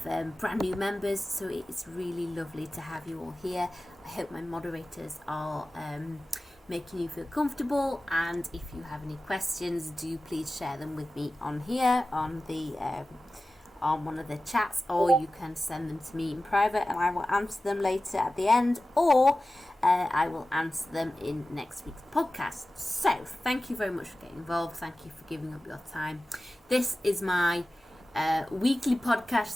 brand new members, so it's really lovely to have you all here. I hope my moderators are making you feel comfortable, and if you have any questions, do please share them with me on here on the on one of the chats, or you can send them to me in private and I will answer them later at the end, or I will answer them in next week's podcast. So thank you very much for getting involved. Thank you for giving up your time. This is my weekly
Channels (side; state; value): both; normal; correlation 0.96